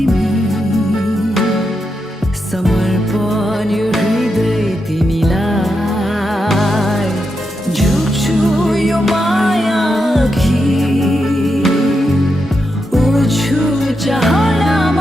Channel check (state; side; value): normal; both; correlation 0.85